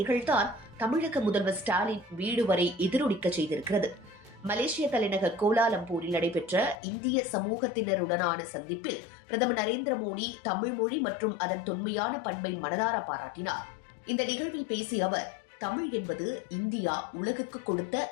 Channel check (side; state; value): right; drops out; at 6.8 s